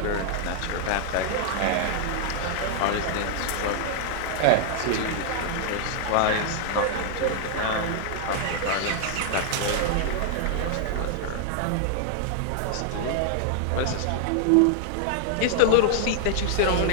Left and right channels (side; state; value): both; different; correlation 0.00